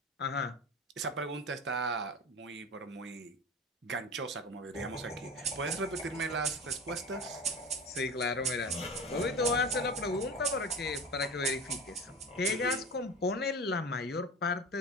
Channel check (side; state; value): both; normal; correlation 0.31